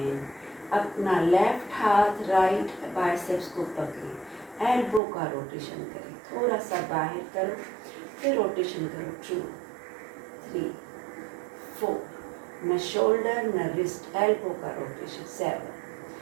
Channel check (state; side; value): drops out; left; at 5.0 s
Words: अपना लेफ्ट हाथ राइट बाइसेप्स को पकड़ें, एल्बो का रोटेशन करें, थोड़ा सा बाहर करो, फिर रोटेशन करो। 2, 3, 4, न शोल्डर न रिस्ट, एल्बो का रोटेशन। 7,